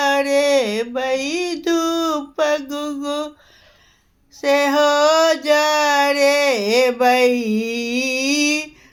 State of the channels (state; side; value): identical; both; correlation 1.00